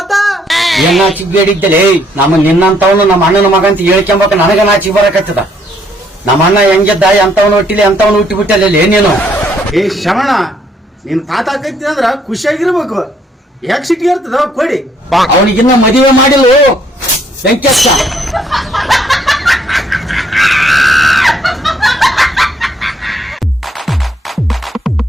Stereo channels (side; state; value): both; normal; correlation 0.68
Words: ಏನ್ ನಾಚಿಕ್ ಬೇಡಿದ್ದಲೇ ನಮ್ಮ ನಿನ್ನಂತವನು ನಮ್ಮ ಅಣ್ಣನ ಮಗ ಅಂತ ಹೇಳ್ಕೊಂಬಕ ನನಗ ನಾಚಿಕ್ ಬರಕತ್ತದ. ನಮ್ಮ ಅಣ್ಣ ಹೆಂಗಿದ್ದ ಎಂತವನು ಹುಟ್ಟಿಲಿ ಎಂತವನು ಹುಟ್ಟಿ ಬಿಟ್ಟಲ್ಲ ನೀನು. ಏ ಶ್ರವಣ, ನೀನ್ ತಾತ ಆಕೈತಿ ಅಂದ್ರ ಖುಷಿಯಾಗಿರ್ಬೇಕು. ಯಾಕೆ ಸಿಟ್ಟಿಗೆ ಇರ್ತದ ಕೊಡಿ. ಅವನಿಗಿನ್ನ ಮದುವೆ ಮಾಡಿಲ್ಲ ವೆಂಕಟೇಶ.